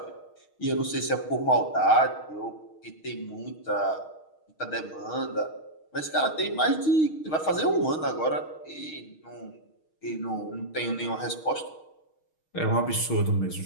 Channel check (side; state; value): right; late; 6.4 ms